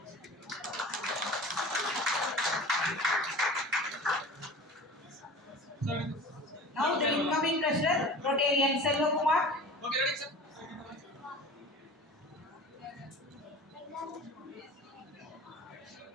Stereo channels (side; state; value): both; normal; correlation 0.38